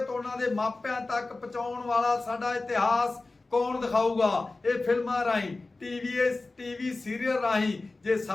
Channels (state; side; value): quieter; right; 3.4 dB